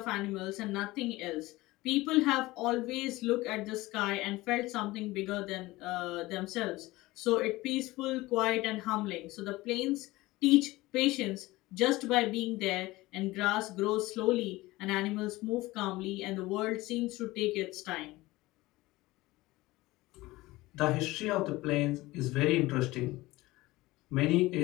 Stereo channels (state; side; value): quieter; right; 19.5 dB